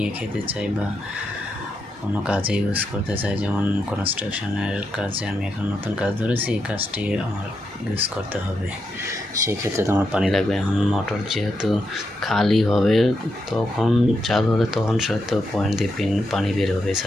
খেতে চাই বা কোনো কাজে ইউজ করতে চাই, যেমন কনস্ট্রাকশনের কাজে আমি এখন নতুন কাজ ধরেছি, এই কাজটি আমার ইউজ করতে হবে, সেই ক্ষেত্রে তো আমার পানি লাগবে। এখন মোটর যেহেতু খালি হবে তখন চালু হলে তখন হয়তো পয়েন্ট দিয়ে পানি বের হবে,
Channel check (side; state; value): both; normal; correlation 0.83